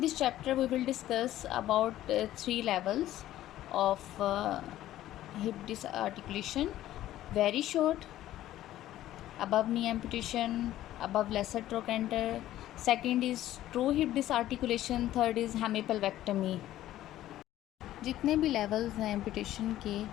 chapter, we will discuss about 3 levels of hip disarticulation: very short, above knee amputation, above lesser trochanter. Second is true hip disarticulation. Third is hemipelvectomy. जितने भी लेवल्स हैं एम्पुटेशन के,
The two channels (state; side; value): quieter; right; 13.8 dB